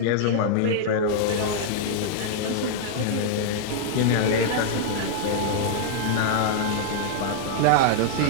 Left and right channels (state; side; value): different; both; correlation -0.01